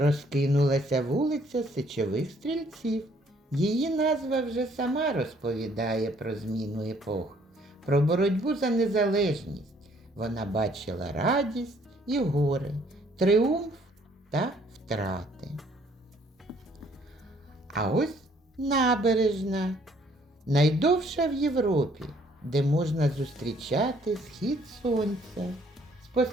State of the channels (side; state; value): both; normal; correlation 0.63